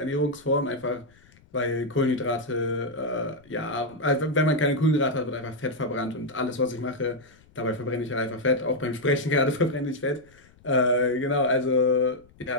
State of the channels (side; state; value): left; noise; rumble, 28 dB below the sound